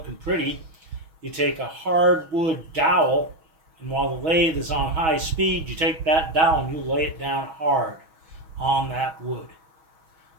pretty, you take a hardwood dowel, and while the lathe is on high speed, you take that dowel and you lay it down hard on that wood.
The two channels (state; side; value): late; left; 6.3 ms